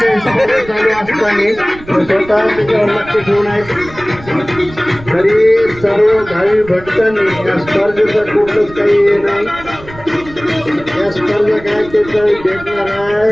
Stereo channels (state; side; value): noise; right; rumble, 18 dB below the sound